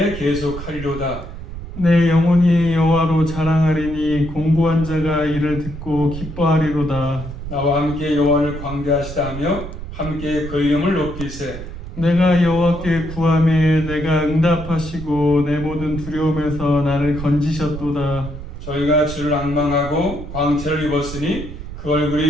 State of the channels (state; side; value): noise; right; rumble, 10 dB below the sound